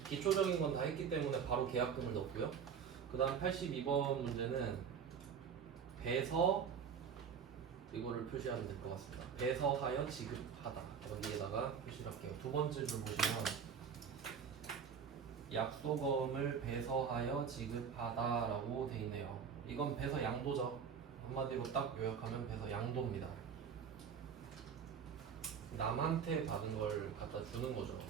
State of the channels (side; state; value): left; quieter; 7.0 dB